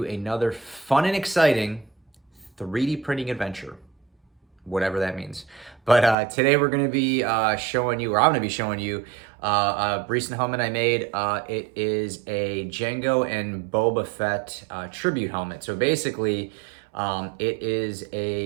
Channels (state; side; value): drops out; left; at 6.2 s